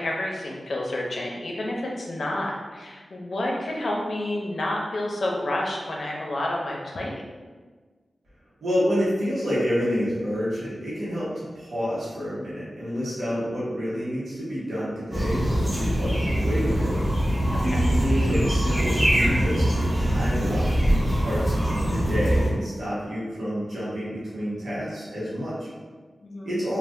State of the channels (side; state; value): both; normal; correlation 0.94